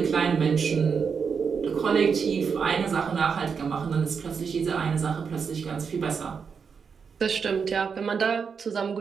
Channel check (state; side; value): quieter; left; 6.1 dB